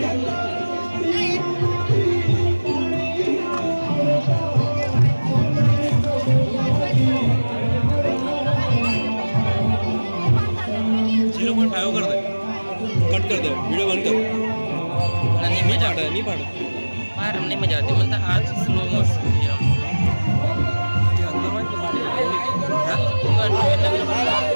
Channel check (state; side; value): inverted; both; correlation -1.00